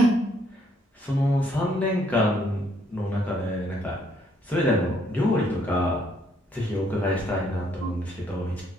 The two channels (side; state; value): both; normal; correlation 0.68